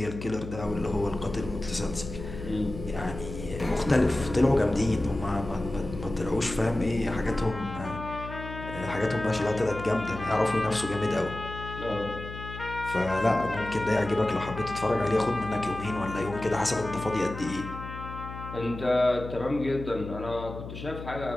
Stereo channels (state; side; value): noise; left; hum, 10 dB below the sound